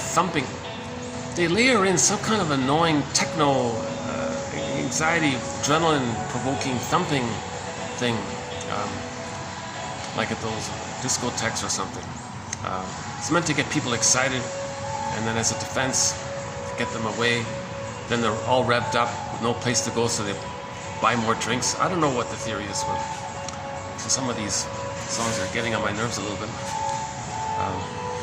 They layer in some kind of annoying techno, anxiety, adrenaline-provoking thumping thing, like at those discotheques or something. It's meant to get people excited, and then as a defense, get them away. Then they're all revved up with no place to go, so they buy more drinks. I don't know what the theory is, but so some of these songs are getting on my nerves a little bit.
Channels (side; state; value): both; identical; correlation 1.00